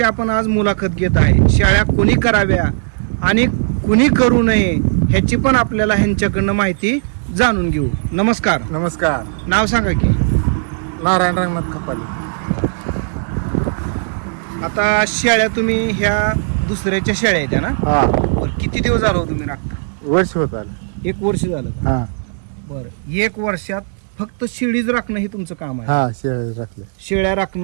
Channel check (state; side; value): silent; left; 68 dB below the other